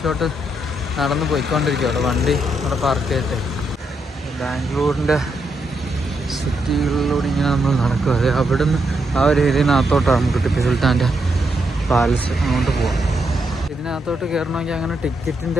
നടന്ന് പോയിക്കൊണ്ടിരിക്കുക. അവിടെ വണ്ടി അവിടെ പാർക്ക് ചെയ്തിട്ട് ബാംഗ്ലൂരിൻ്റെ സിറ്റികളിലൂടെ ഇങ്ങനെ നമ്മൾ നടക്കുക. അത് അവിടുന്ന് ആ ഒരു ഏരിയനകത്തോട്ടാണ് നമുക്ക് ടിപ്പു സുൽത്താൻ്റെ പാലസ് അങ്ങോട്ട് പോകാം. ഇതിനകത്തോട്ട് കയറണമെങ്കിൽ അങ്ങനെ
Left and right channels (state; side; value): normal; both; correlation 0.80